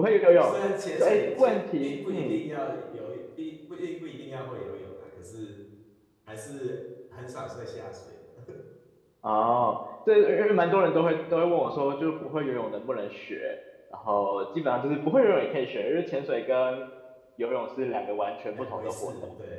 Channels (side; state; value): both; identical; correlation 1.00